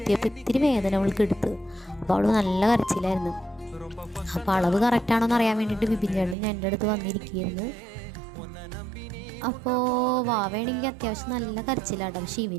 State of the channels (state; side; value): drops out; left; at 6.4 s